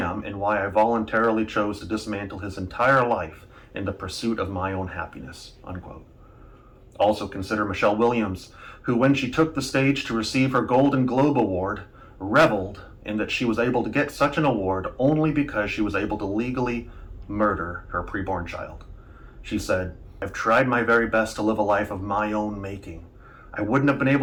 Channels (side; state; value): both; identical; correlation 1.00